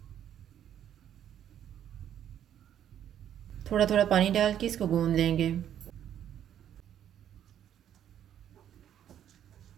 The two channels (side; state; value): left; quieter; 10.2 dB